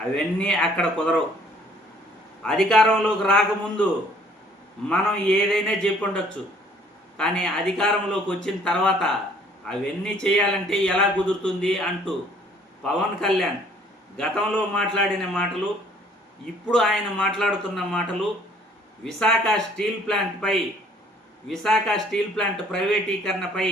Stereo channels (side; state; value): both; normal; correlation 0.59